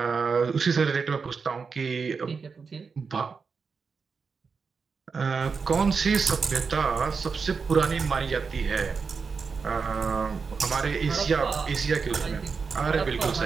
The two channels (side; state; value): left; quieter; 5.2 dB